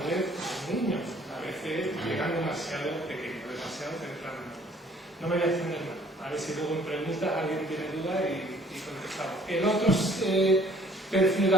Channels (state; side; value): normal; both; correlation 0.58